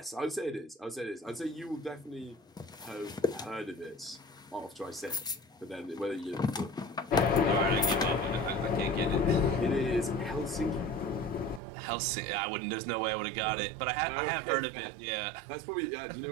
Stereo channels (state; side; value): drops out; left; at 11.6 s